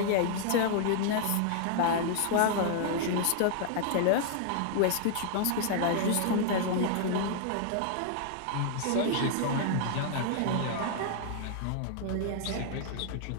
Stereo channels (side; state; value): both; different; correlation -0.01